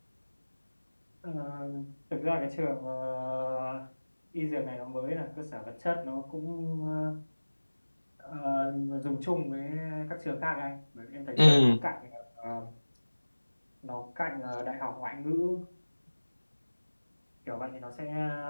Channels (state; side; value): inverted; both; correlation -1.00